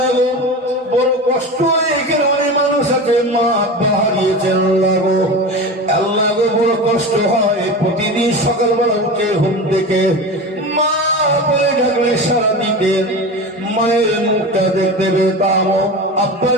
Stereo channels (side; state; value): both; normal; correlation 0.28